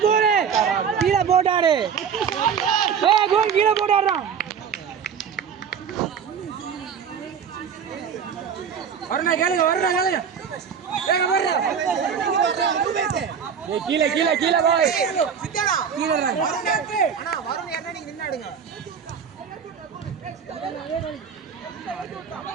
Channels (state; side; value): quieter; left; 7.2 dB